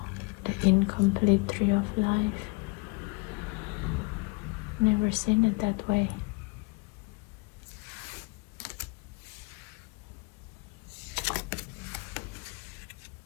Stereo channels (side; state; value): right; quieter; 27.0 dB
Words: the incomplete Tree of Life. Never seen it that way.